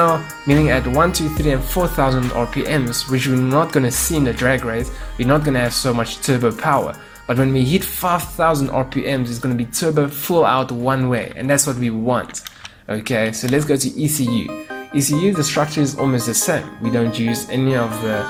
meaning at 1, 2, 3, and 4,000 RPMs, which we're not going to see in the drag race, we're not going to have so much turbo power. But when we hit 5,000 RPMs, it's going to be turbo full out one way, and that's what we want. Okay, so let's go to ECU. ECU, the structure is almost the same. We don't use any of the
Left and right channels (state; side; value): identical; both; correlation 1.00